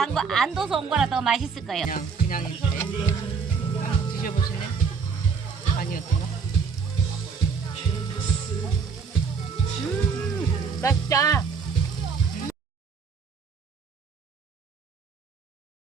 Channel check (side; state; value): left; quieter; 5.5 dB